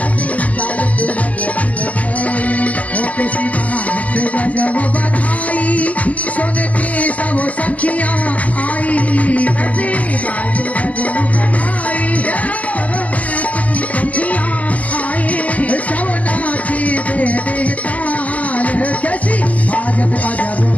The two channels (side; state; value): right; late; 0.069 ms